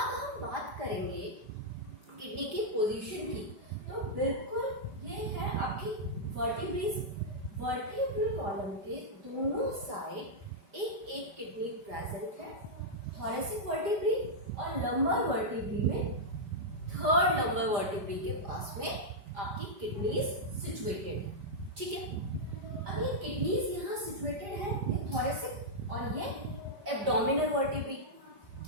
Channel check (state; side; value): late; left; 5.0 ms